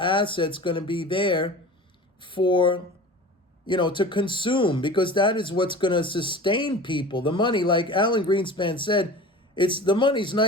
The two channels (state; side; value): normal; both; correlation 0.37